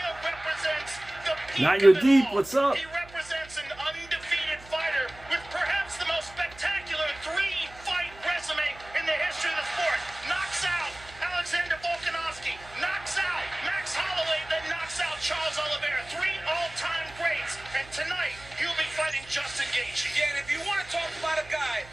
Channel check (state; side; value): noise; right; hum, 20 dB below the sound